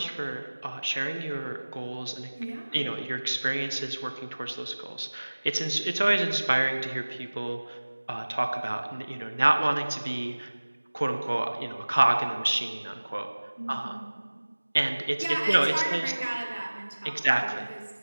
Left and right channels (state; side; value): inverted; both; correlation -1.00